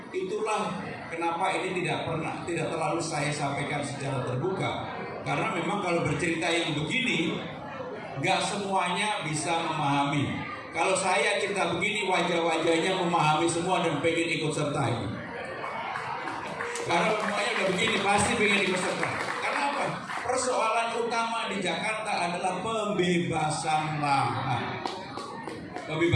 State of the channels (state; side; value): identical; both; correlation 1.00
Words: itulah kenapa ini tidak terlalu saya sampaikan secara terbuka. Karena memang kalau bercerita yang begini, nggak semuanya bisa memahami. Kalau saya cerita begini, wajah-wajahnya memahami semua dan pengen ikut serta ini. Karena semuanya udah begini, pasti pengen ikut serta. Karena apa? Persoalan utama di Jakarta adalah pembebasan lahan.